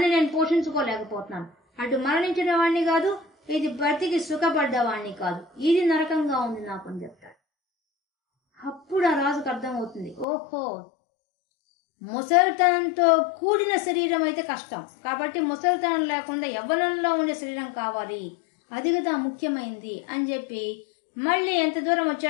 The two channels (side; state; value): right; drops out; at 10.2 s